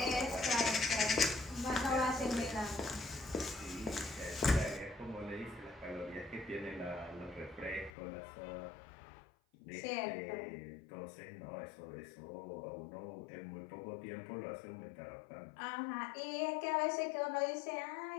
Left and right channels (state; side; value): drops out; right; at 7.9 s